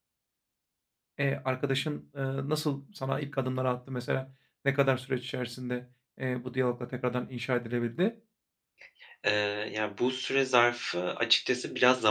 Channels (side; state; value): both; identical; correlation 1.00